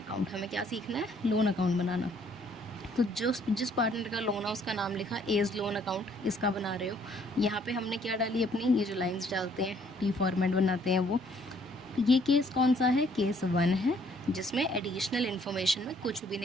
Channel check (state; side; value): normal; both; correlation 0.63